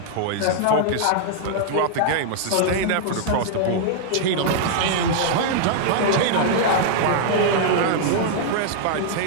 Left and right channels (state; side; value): different; both; correlation -0.01